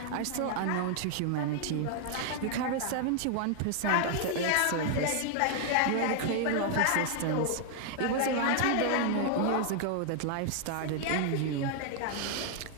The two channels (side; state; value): both; different; correlation 0.00